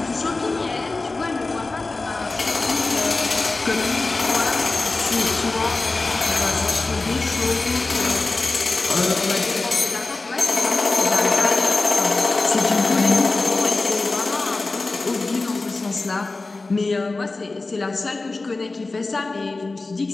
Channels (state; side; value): quieter; right; 3.4 dB